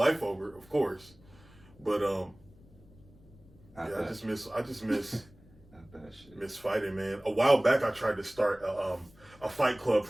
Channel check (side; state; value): left; noise; rumble, 25 dB below the sound